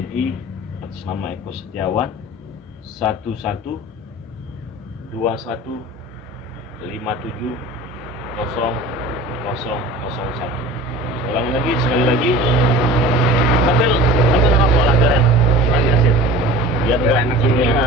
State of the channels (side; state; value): both; normal; correlation 0.39